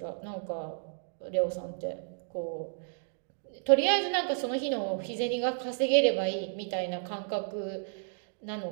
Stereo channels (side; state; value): left; silent; digital silence